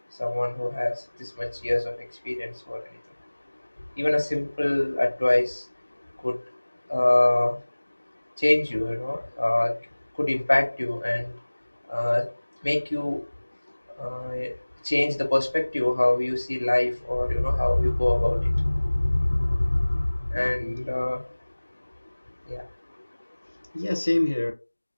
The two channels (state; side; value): inverted; both; correlation -1.00